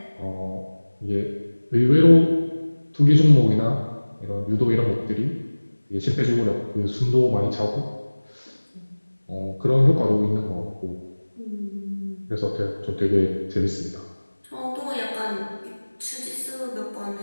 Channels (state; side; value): inverted; both; correlation -1.00